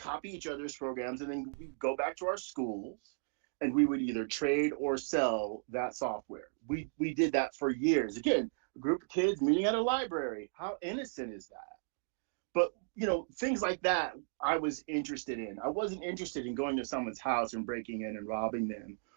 each other's programs and then we'd go back to our schools and we would either trade or sell that software. We did that for years. Again, a group of kids meeting at a library. How innocent is that? But, you know, things like that I was interested in. I wasn't interested in going to someone's house and breaking in and robbing them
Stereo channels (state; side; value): silent; left; digital silence